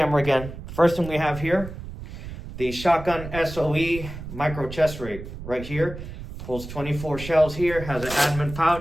again. First thing we have here, the Shotgun SOE micro chest rig right here. Pulls 24 shells here, has an admin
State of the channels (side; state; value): right; noise; rumble, 11 dB below the sound